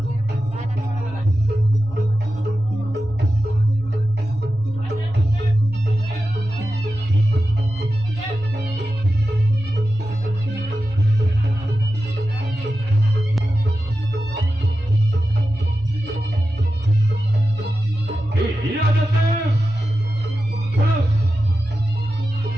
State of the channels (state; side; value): normal; both; correlation 0.92